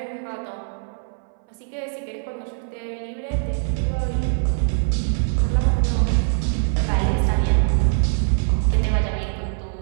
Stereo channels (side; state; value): left; silent; 60 dB below the other